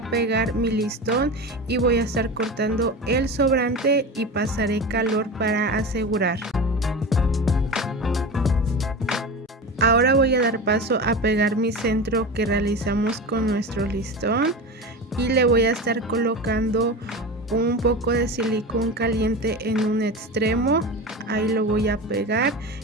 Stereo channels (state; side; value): normal; both; correlation 0.28